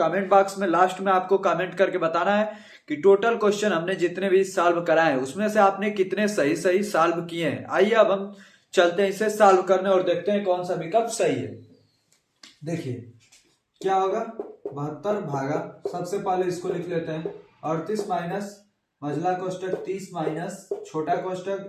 बॉक्स में लास्ट में आपको कमेंट करके बताना है कि टोटल क्वेश्चन हमने जितने भी सॉल्व कराए हैं उसमें से आपने कितने सही सही सॉल्व किए हैं। आइए अब हम चलते हैं इसे सॉल्व करने और देखते हैं कौन सा विकल्प सही है। देखिए क्या होगा? 72 भागा, सबसे पहले इसको लिख लेते हैं, 38 माइनस मझला कोष्टक 30 माइनस छोटा कोष्टक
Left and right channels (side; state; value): both; identical; correlation 1.00